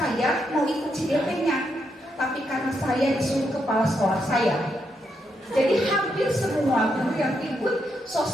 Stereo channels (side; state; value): both; normal; correlation 0.80